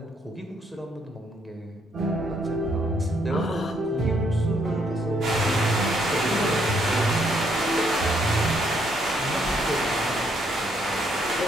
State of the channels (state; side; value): normal; both; correlation 0.72